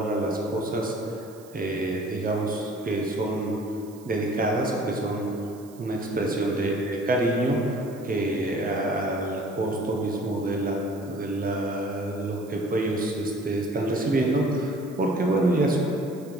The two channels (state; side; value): noise; right; hiss, 24 dB below the sound